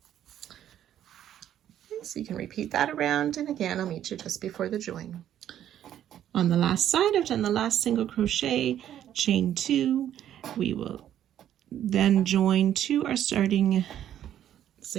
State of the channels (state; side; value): quieter; left; 11.0 dB